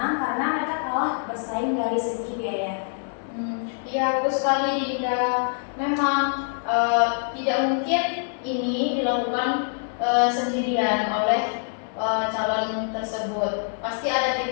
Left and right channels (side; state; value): right; silent; 62 dB below the other